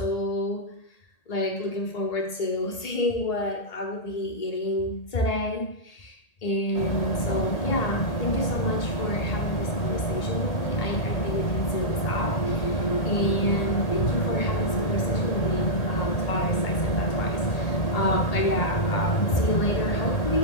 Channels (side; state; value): right; late; 1.8 ms